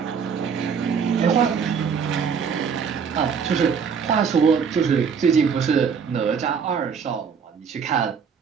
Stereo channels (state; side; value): quieter; left; 6.5 dB